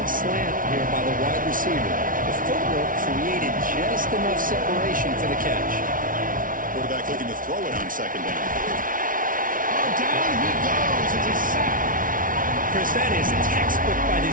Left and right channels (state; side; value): late; left; 0.39 ms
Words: slant here by the wide receiver. The footwork created just enough separation for the catch. Quarterback looking to throw it on 2nd down. Oh, down he goes. It's a sack. Chris, that is textbook by